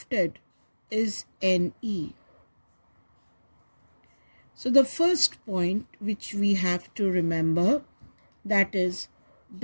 is NE. So the first point which we have to remember, that is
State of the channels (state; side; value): inverted; both; correlation -1.00